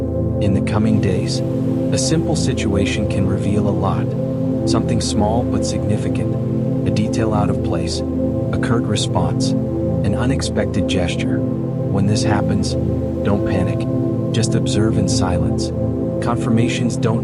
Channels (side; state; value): both; identical; correlation 1.00